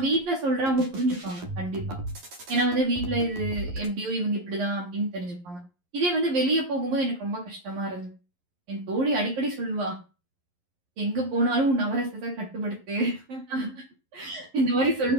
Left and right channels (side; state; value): left; late; 11 ms